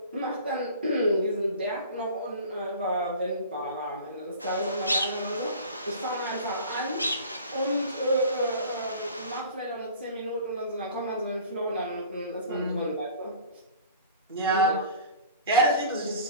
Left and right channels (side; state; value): both; inverted; correlation -0.42